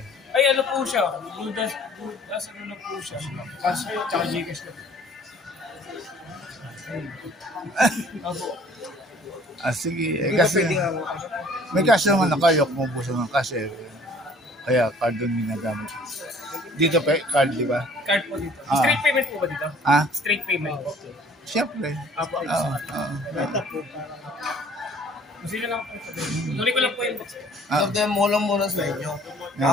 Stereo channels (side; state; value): both; normal; correlation 0.54